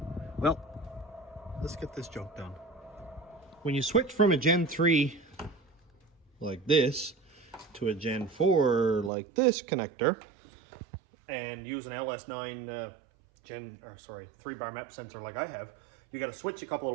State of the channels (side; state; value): left; drops out; at 9.1 s